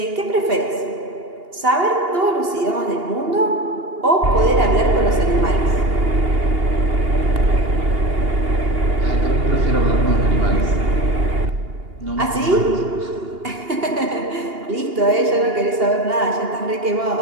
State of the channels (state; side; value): late; left; 2.8 ms